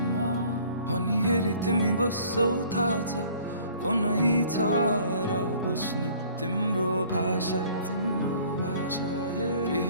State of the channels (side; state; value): both; inverted; correlation -0.54